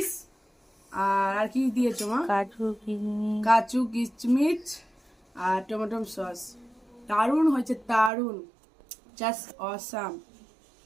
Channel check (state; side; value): drops out; left; at 8.1 s